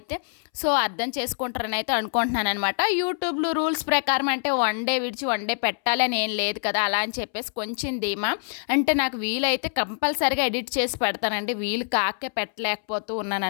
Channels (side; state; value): right; silent; 62 dB below the other